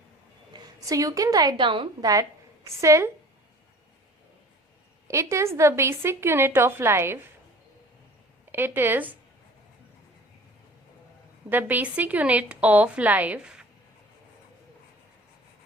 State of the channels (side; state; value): both; normal; correlation 0.45